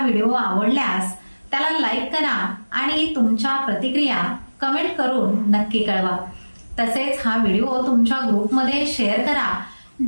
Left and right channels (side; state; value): both; inverted; correlation -1.00